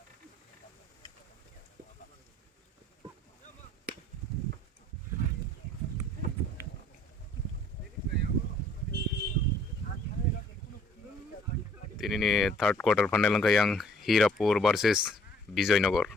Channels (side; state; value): both; normal; correlation 0.59